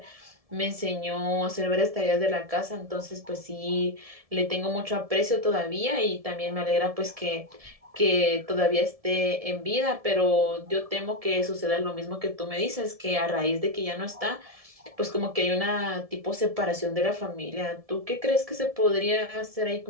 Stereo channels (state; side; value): late; left; 1.7 ms